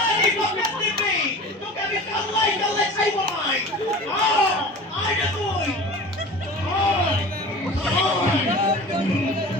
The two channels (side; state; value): both; normal; correlation 0.37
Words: বকত দিবি। তোকে আমি কাল্লাই কাল্লাই ছাইব নাই। আয় না তুই।